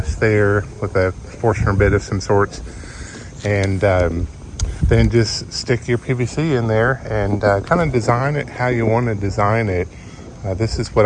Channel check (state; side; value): identical; both; correlation 1.00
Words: there with a Forstner bit of some sorts. And then just stick your PVC in there and kind of design it how you want to design it. This is what